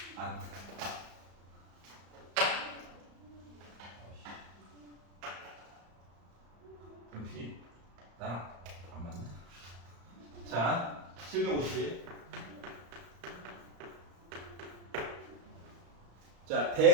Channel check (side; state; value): left; late; 34 ms